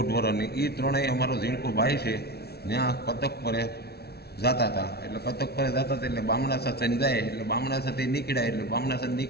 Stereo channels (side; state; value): right; late; 0.46 ms